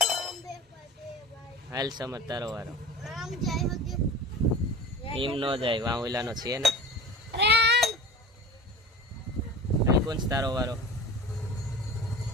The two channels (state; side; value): normal; both; correlation 0.36